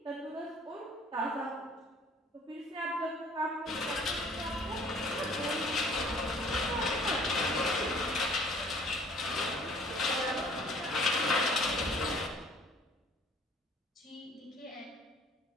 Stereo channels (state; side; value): normal; both; correlation 0.54